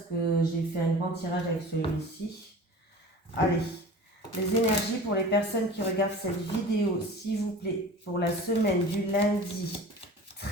que j'ai fait un grand tirage avec celui-ci. Allez, les énergies pour les personnes qui regardent cette vidéo, s'il vous plaît, pour la semaine du lundi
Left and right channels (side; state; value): both; normal; correlation 0.39